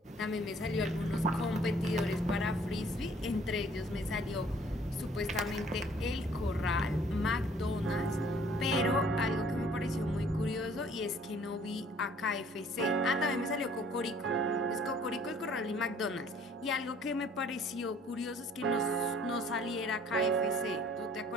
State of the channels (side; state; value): both; normal; correlation 0.57